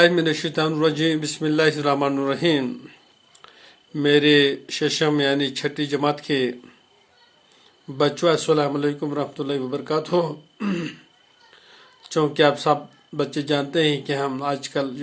बिस्मिल्लाहिर्रहमानिर्रहीम। मेरे शशम यानी छठी जमात के बच्चों अस्सलाम वालेकुम रहमतुल्लाहि व बरकातुहू। चूँकि आप सब बच्चे जानते हैं कि हम आजकल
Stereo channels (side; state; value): both; identical; correlation 1.00